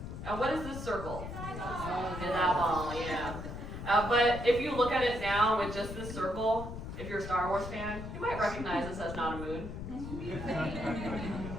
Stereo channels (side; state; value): left; noise; rumble, 8 dB below the sound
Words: And what is this circle? An eyeball, yeah. But if you look at it now with just this circle, if you're a Star Wars fan, you might recognize this as not a moon.